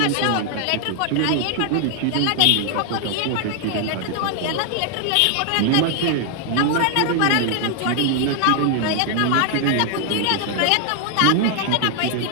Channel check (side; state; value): both; different; correlation 0.00